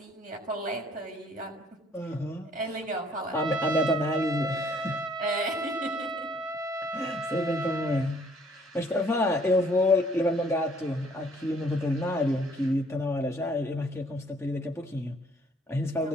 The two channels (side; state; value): both; normal; correlation 0.61